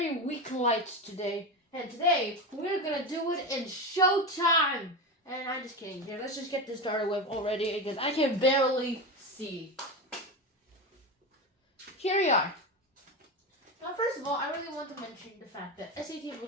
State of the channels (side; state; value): both; normal; correlation 0.20